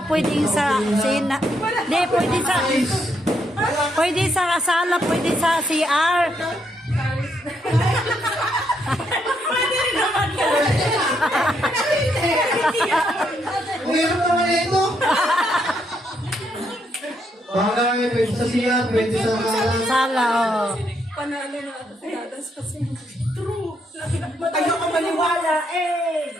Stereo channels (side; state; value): both; normal; correlation 0.76